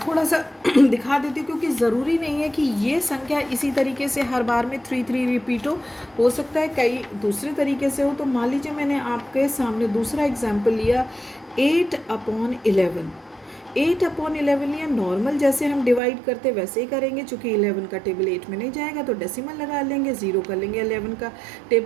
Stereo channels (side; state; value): left; drops out; at 16.0 s